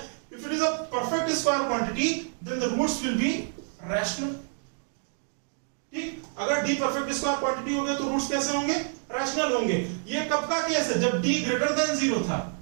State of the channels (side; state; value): left; silent; 59 dB below the other